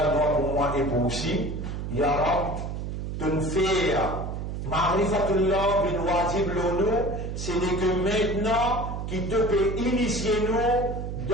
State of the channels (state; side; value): noise; right; hum, 5 dB below the sound